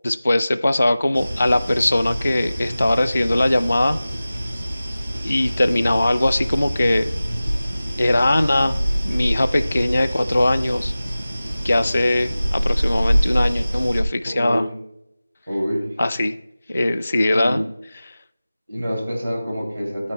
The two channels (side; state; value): both; inverted; correlation -0.97